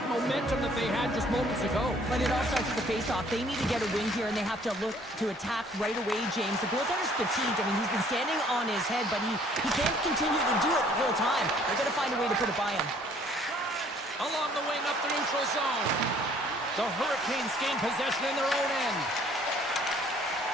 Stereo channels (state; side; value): normal; both; correlation 0.59